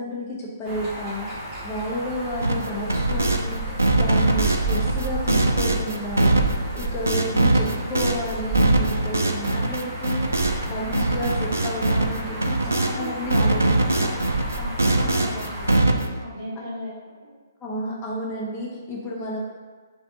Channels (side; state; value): both; inverted; correlation -0.75